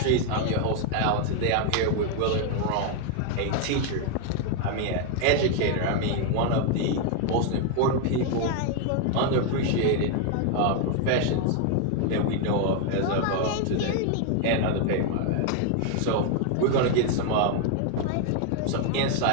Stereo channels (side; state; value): both; different; correlation 0.01